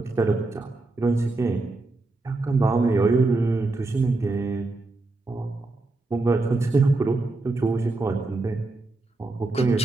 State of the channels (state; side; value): quieter; left; 3.2 dB